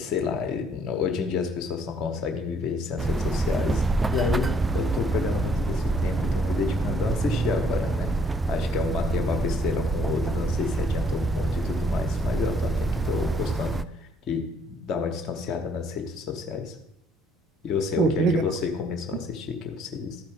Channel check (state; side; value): normal; both; correlation 0.65